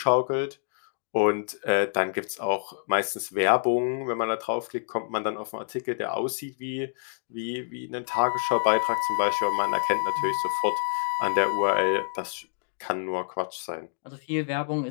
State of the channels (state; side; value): silent; right; digital silence